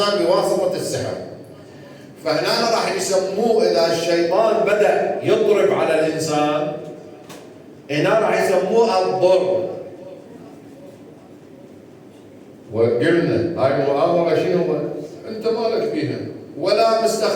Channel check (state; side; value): identical; both; correlation 1.00